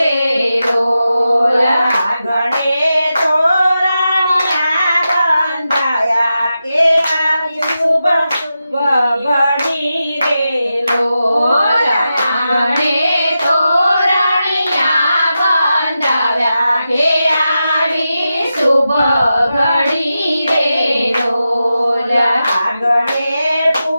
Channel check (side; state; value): both; inverted; correlation -0.90